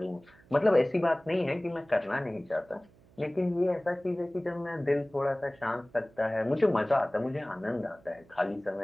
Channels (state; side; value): noise; right; hum, 28 dB below the sound